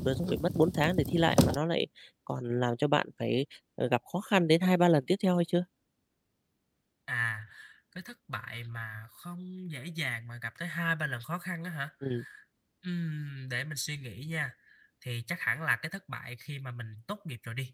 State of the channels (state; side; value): identical; both; correlation 1.00